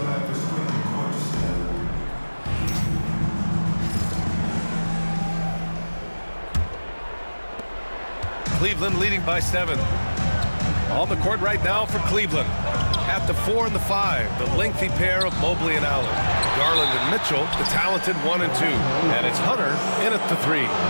Cleveland leading by 7. On the court right now for Cleveland. At the 4 and the 5, the lengthy pair of Mobley and Allen. Garland and Mitchell, the talented 1 and 2. And it's Hunter in at the 3.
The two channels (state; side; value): inverted; both; correlation -1.00